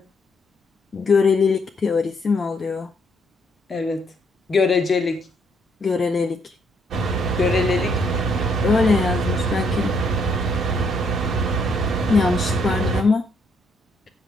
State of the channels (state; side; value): normal; both; correlation 0.71